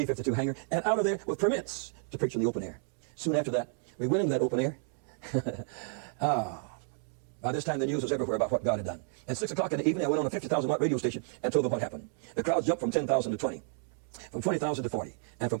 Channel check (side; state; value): left; silent; 57 dB below the other